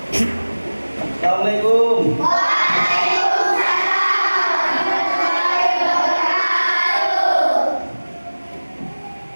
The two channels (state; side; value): inverted; both; correlation -1.00